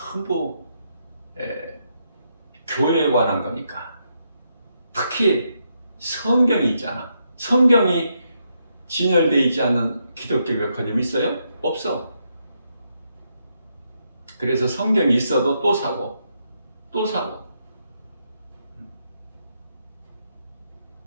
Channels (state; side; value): inverted; both; correlation -0.80